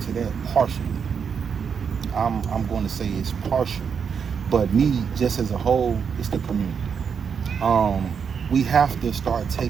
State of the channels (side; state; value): left; quieter; 6.7 dB